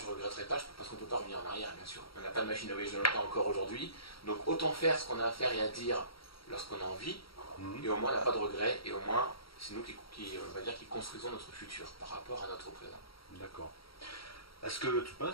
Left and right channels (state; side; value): late; right; 0.75 ms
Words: ne regretterai pas, parce qu'on ne peut pas revenir en arrière, bien sûr. On n'a pas de machine à voyager dans le temps encore aujourd'hui. Donc, autant faire ce qu'on a à faire et à dire lorsqu'on a envie, et au moins, on n'a pas de regrets, et au moins, c'est nous qui construisons notre futur par rapport à notre présent. D'accord. Est-ce que tu